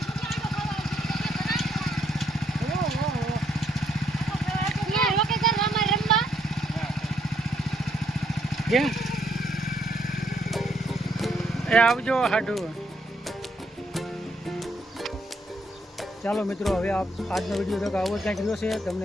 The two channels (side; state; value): both; normal; correlation 0.72